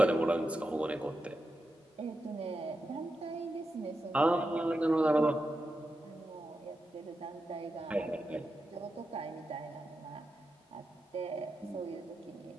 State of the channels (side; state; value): both; normal; correlation 0.88